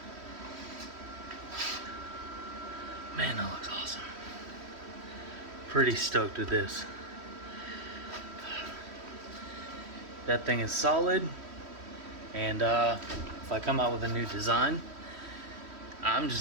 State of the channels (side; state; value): left; late; 3.1 ms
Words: Man, that looks awesome. Pretty stoked with this. That thing is solid, and if I come out with a new design, I'm